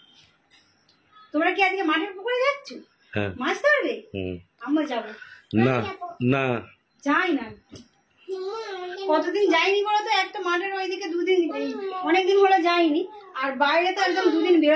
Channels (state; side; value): identical; both; correlation 1.00